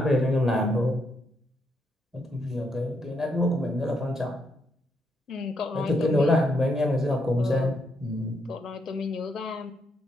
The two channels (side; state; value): both; normal; correlation 0.78